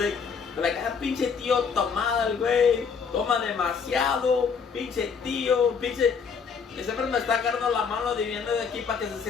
They're like, ah, pinche tío tomada el güey, toma demasiado, pinche tío, pinche. Y siempre me está agarrando la mano de viendo de aquí para que se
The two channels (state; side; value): quieter; right; 6.0 dB